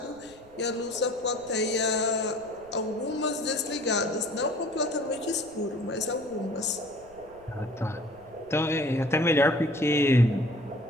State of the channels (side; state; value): right; noise; rumble, 26 dB below the sound